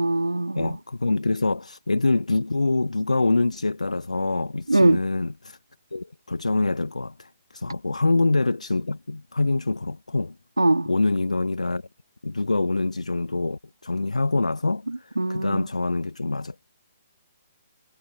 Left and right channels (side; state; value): both; inverted; correlation -0.96